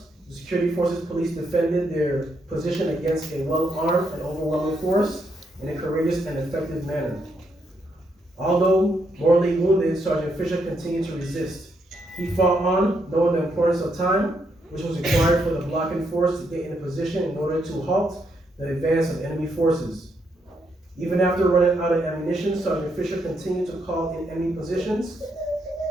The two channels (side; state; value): both; normal; correlation 0.77